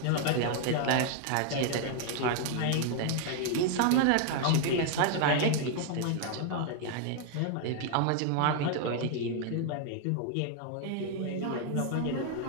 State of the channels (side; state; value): both; different; correlation 0.00